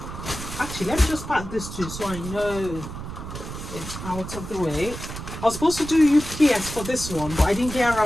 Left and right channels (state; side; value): noise; right; rumble, 9 dB below the sound